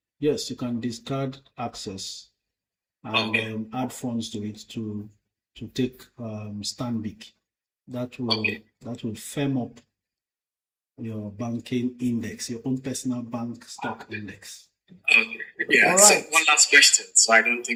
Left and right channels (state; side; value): identical; both; correlation 1.00